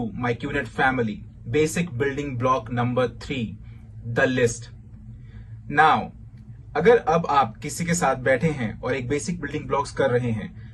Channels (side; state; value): both; identical; correlation 1.00